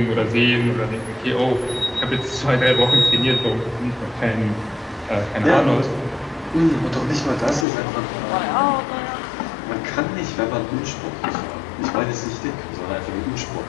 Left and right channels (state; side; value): drops out; right; at 7.7 s